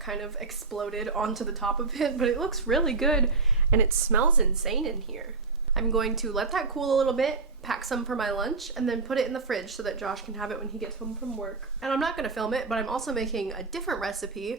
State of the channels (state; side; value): quieter; left; 3.9 dB